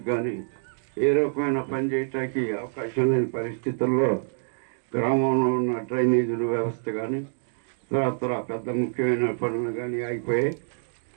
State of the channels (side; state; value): left; silent; digital silence